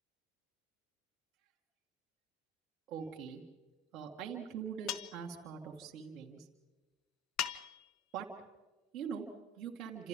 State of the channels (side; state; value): both; normal; correlation 0.37